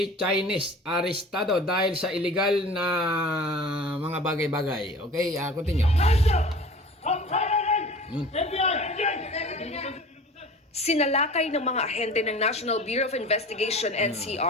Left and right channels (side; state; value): both; normal; correlation 0.41